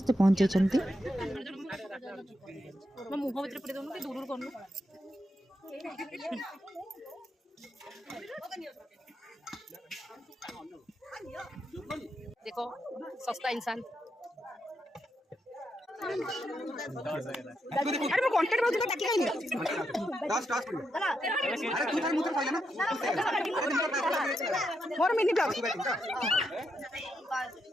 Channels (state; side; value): normal; both; correlation 0.82